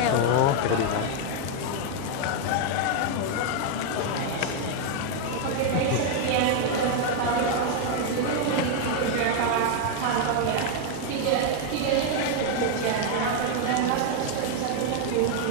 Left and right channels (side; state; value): both; different; correlation 0.00